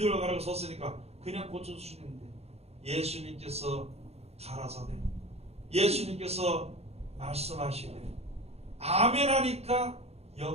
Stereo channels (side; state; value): left; late; 0.30 ms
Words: 가라고 섰으니까 그냥 고쳐줄 수 있는데, 예수님께서 가라사대, 예수님께서 말씀하시되 아멘 하니까